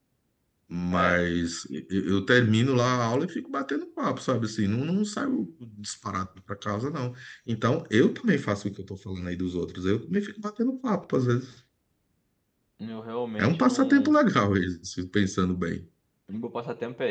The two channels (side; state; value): both; identical; correlation 1.00